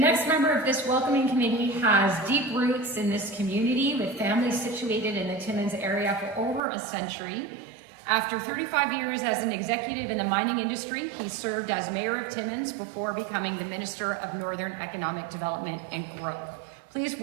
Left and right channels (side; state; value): left; drops out; at 6.6 s